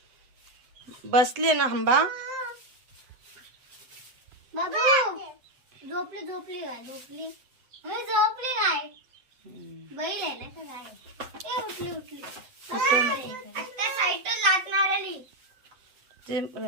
बसले ना हंबा. बाबू झोपली झोपली काय झोपली झोपली काय बैल आहे ना का काय उठली उठली त्या साईडला लागणार आली ते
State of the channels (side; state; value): left; late; 7.9 ms